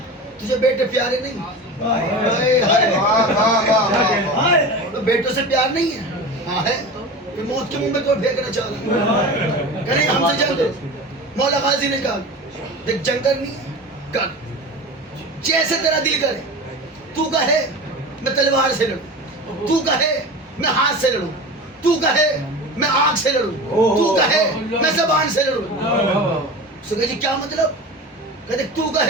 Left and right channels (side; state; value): both; normal; correlation 0.31